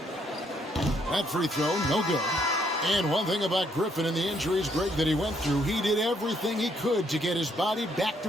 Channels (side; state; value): both; normal; correlation 0.71